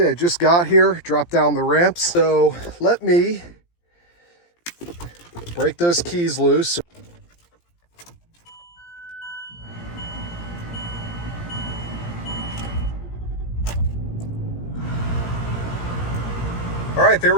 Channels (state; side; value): late; right; 17 ms